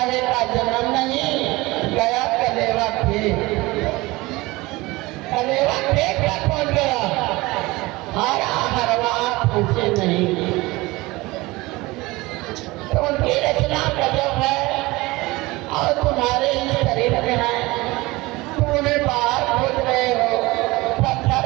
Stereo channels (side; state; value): left; quieter; 21.4 dB